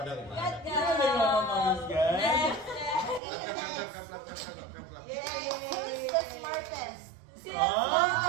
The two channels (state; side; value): drops out; left; at 3.2 s